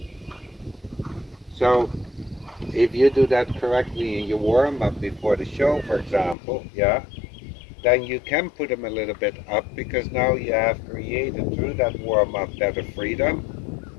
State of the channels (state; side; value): drops out; right; at 6.4 s